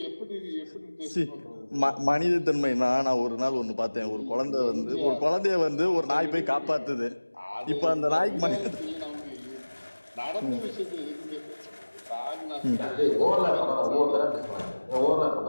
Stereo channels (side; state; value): both; inverted; correlation -1.00